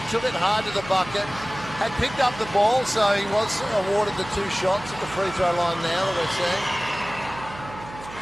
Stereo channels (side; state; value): right; noise; hum, 15 dB below the sound